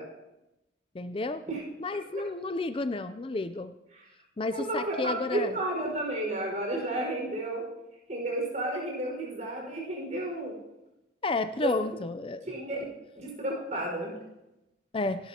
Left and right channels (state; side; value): normal; both; correlation 0.27